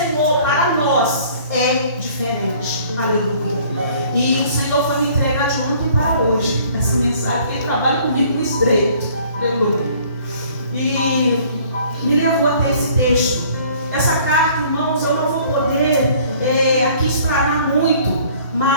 para nós, é diferente. Aleluia. E o Senhor foi me entregar de ontem para hoje essa mensagem, porque Ele trabalha comigo no estreito. Aleluia. E me levou até esse texto. Essa carta, irmãos, eu não vou poder aqui explanar muito,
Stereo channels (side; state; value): both; inverted; correlation -0.55